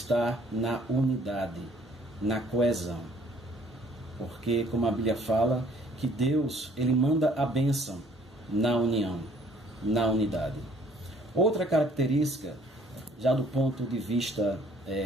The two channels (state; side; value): normal; both; correlation 0.59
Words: na unidade, na coesão. Porque, como a Bíblia fala, que Deus ele manda a bênção na união, na unidade. Outra característica, já do ponto de vista